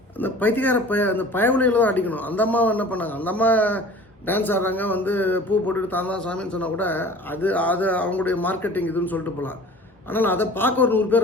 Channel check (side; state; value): both; normal; correlation 0.44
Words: அந்த பைத்தியக்கார அந்த பயவுலையில் தான் அடிக்கணும். அந்த அம்மாவை என்ன பண்ணாங்க, அந்த அம்மா டான்ஸ் ஆடுறாங்க, வந்து பூ போட்டுட்டு தான் தான் சாமின்னு சொன்னால் கூட அது அவங்களுடைய மார்க்கெட்டிங் இதுன்னு சொல்லிட்டு போகலாம். ஆனால் அதை பார்க்க ஒரு 100